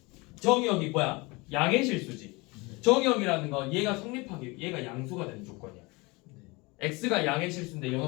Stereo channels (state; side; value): quieter; right; 25.4 dB